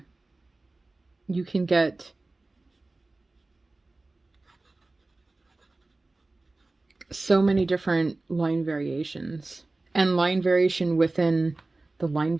you can get so many different line variations and line variation within the line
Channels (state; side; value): quieter; left; 3.1 dB